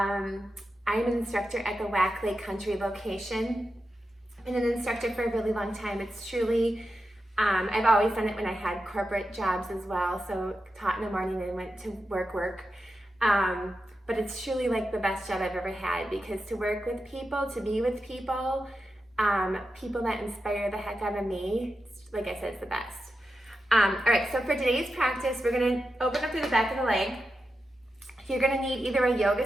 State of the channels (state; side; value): normal; both; correlation 0.89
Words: an instructor at the Whack Lake Country location. I've been an instructor for a really long time. It's truly, I've always done it when I had corporate jobs as well. So taught in the morning and went to work. But it's truly like the best job I've ever had, because to work with people, to be with people, people that inspire the heck out of me, like I said, it's the best. All right, so for today's practice, we're gonna open up through the back of the leg. You're gonna need either a yoga